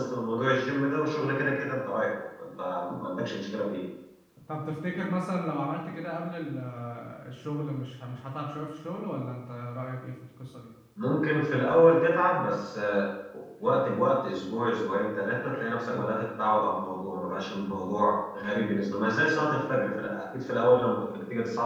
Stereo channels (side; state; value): both; identical; correlation 1.00